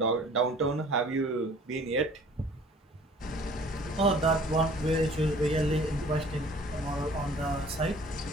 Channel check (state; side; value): normal; both; correlation 0.51